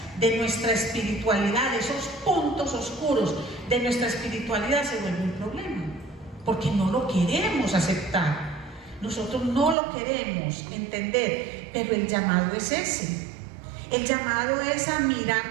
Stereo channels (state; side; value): drops out; left; at 9.8 s